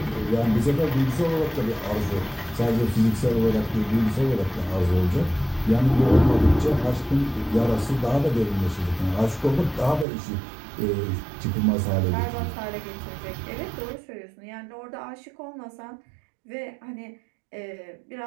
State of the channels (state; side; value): drops out; left; at 10.1 s